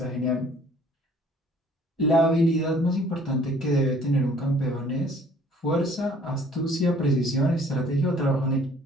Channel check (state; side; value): normal; both; correlation 0.55